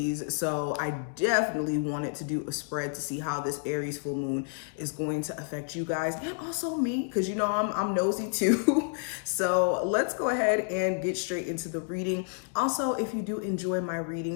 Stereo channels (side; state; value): right; silent; 58 dB below the other